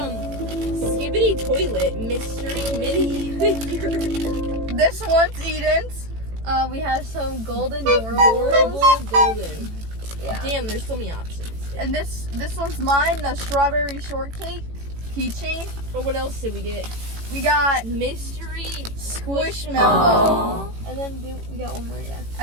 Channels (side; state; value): left; late; 18 ms